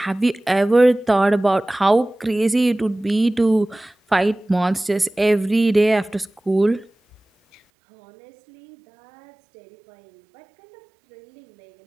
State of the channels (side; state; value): left; drops out; at 7.6 s